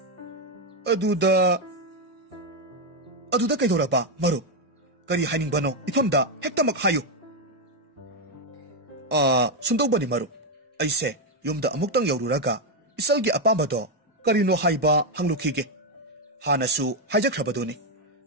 aduda kaidoraba marup kari hainingbano ifamda hektamak hayu sundobani marup aise yumda amuktang yaururaga isalgi apambado karino haiba hanglukhige hanasu haijakhrabaduni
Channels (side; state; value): both; normal; correlation 0.03